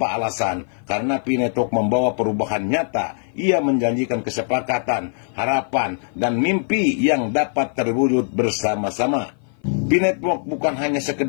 alasan, karena Pi Network membawa perubahan nyata. Ia menjanjikan kesepakatan, harapan, dan mimpi yang dapat terwujud bersama-sama. Pi Network bukan hanya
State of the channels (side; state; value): right; silent; 55 dB below the other